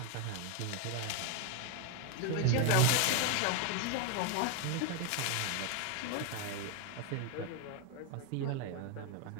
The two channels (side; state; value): both; different; correlation 0.01